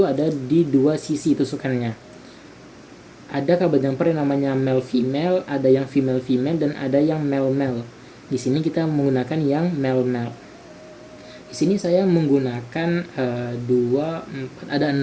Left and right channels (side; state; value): both; identical; correlation 1.00